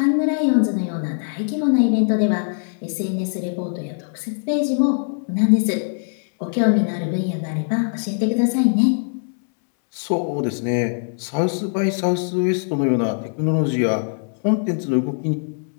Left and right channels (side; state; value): right; silent; 65 dB below the other